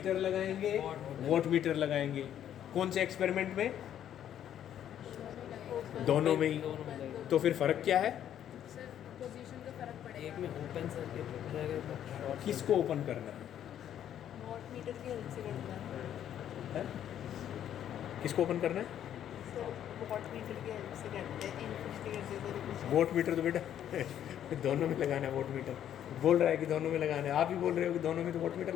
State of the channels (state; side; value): quieter; right; 10.4 dB